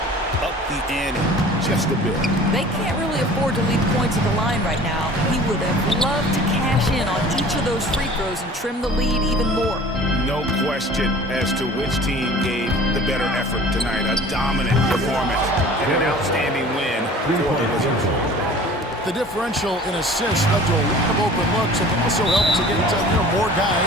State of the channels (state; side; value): normal; both; correlation 0.45